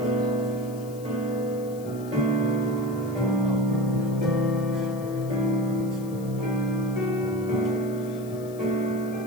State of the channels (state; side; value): noise; left; hiss, 21 dB below the sound